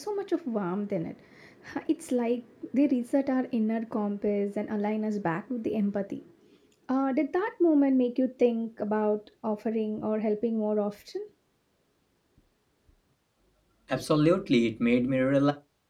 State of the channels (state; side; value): identical; both; correlation 1.00